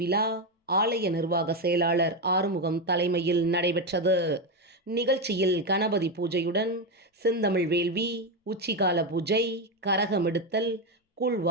ஆலய நிர்வாக செயலாளர் ஆறுமுகம் தலைமையில் நடைபெற்றது. நிகழ்ச்சியில் கணபதி பூஜையுடன் செந்தமிழ் வேள்வி, உச்சிகால பூஜை, கரகம் எடுத்தல், கூழ்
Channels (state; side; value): normal; both; correlation 0.10